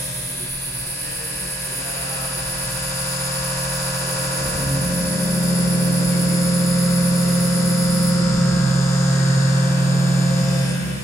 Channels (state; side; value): normal; both; correlation 0.79